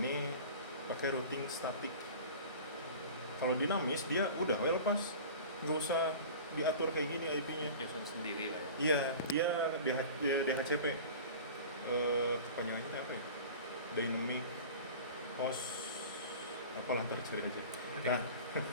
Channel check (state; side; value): inverted; both; correlation -0.37